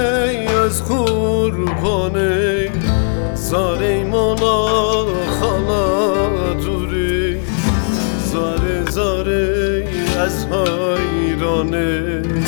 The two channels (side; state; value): right; silent; digital silence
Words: از قربانه زاره مولا خالا دوری زاره زاره از حیرانه